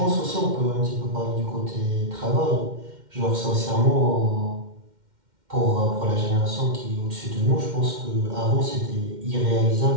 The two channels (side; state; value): left; late; 2.1 ms